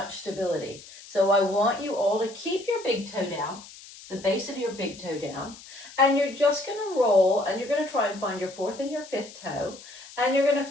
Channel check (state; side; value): noise; left; hiss, 18 dB below the sound